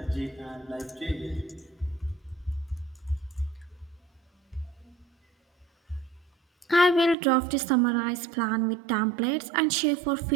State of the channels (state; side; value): drops out; left; at 7.2 s